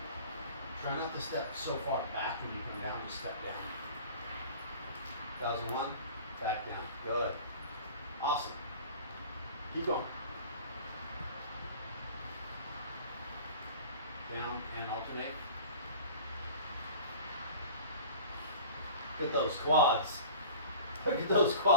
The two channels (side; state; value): both; inverted; correlation -0.42